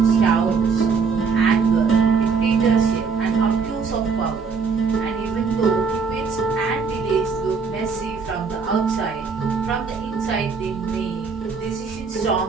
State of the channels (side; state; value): left; quieter; 5.3 dB